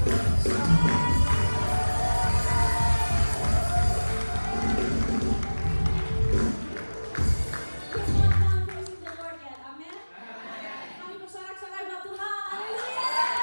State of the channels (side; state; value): both; inverted; correlation -1.00